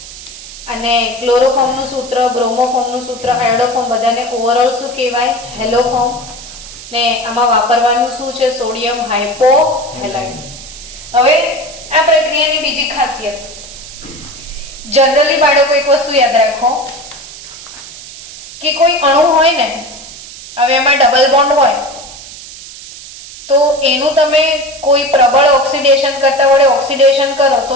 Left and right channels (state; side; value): noise; right; hiss, 15 dB below the sound